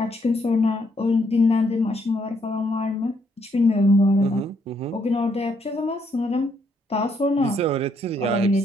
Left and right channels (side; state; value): both; normal; correlation 0.73